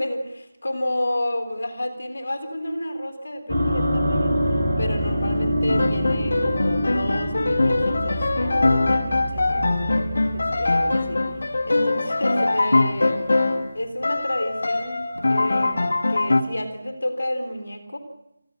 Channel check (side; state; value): both; inverted; correlation -0.95